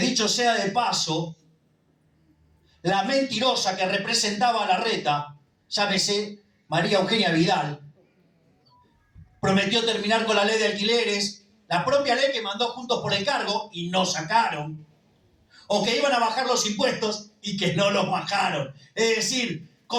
sea de paso, la mentirosa que representaba a Larreta, llámese María Eugenia Vidal, prometió terminar con la ley de alquileres, la propia ley que mandó Juntos por el Cargo y no sacaron, o que iban a bajar los impuestos y que no los bajaron. Es decir,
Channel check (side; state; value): both; identical; correlation 1.00